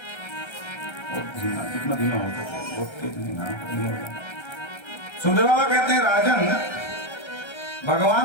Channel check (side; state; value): right; late; 1.3 ms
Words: कितना धीमा होता है, बहुत तेज धीमा। सुखदेव बाबा कहते हैं राजन,